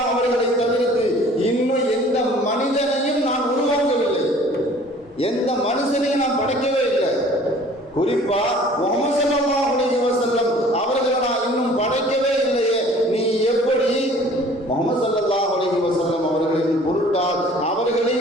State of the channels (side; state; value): both; normal; correlation 0.51